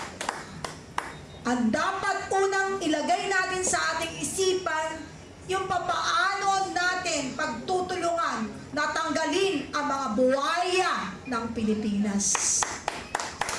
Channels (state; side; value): identical; both; correlation 1.00